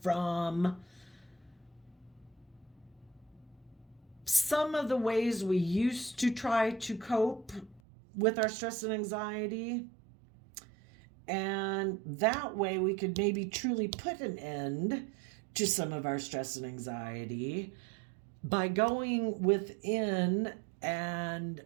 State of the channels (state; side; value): drops out; left; at 7.8 s